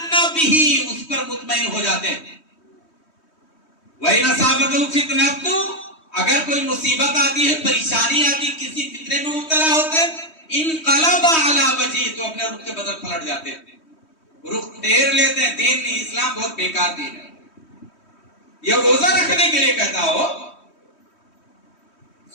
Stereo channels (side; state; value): right; late; 3.1 ms